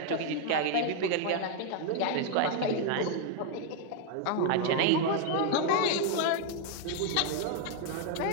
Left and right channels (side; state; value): both; different; correlation 0.00